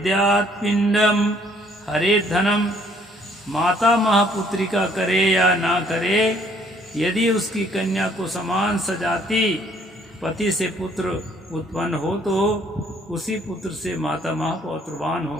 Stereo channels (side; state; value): both; normal; correlation 0.63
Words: पिंडम हरे धनम। माता महापुत्रिका करे या ना करे, यदि उसकी कन्या को समान सजाती पति से पुत्र उत्पन्न हो तो उसी पुत्र से माता मह पौत्रवान